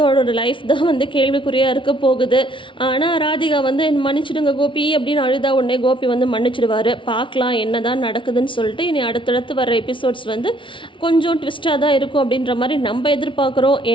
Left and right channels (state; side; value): late; right; 0.25 ms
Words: லைஃப் தான் வந்து கேள்விக்குறியாக இருக்க போகுது. ஆனால் ராதிகா வந்து மன்னிச்சிடுங்க கோபி அப்படின்னு அழுதா உடனே கோபி வந்து மன்னிச்சிடுவார். பார்க்கலாம் என்ன தான் நடக்குதுன்னு சொல்லிட்டு இனி அடுத்தடுத்து வர எபிசோட்ஸ் வந்து கொஞ்சம் ட்விஸ்ட்டாக தான் இருக்கும் அப்படின்ற மாதிரி நம்ம எதிர்பார்க்குறோம்.